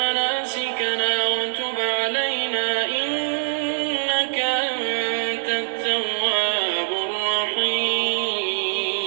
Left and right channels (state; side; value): silent; left; digital silence